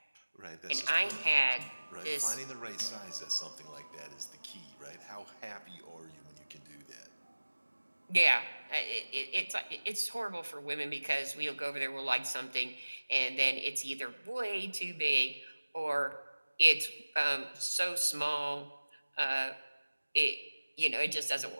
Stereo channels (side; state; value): both; inverted; correlation -1.00